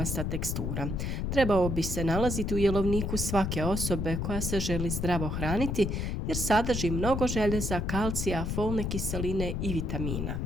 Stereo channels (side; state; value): left; noise; rumble, 1 dB below the sound